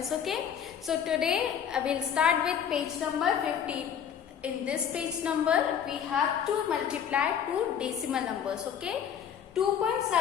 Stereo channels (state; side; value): quieter; right; 8.4 dB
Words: okay? So today I will start with page number 15. In this page number we have to multiply two decimal numbers, okay?